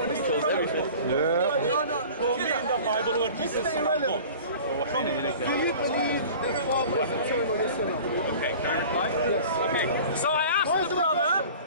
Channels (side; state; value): both; inverted; correlation -0.42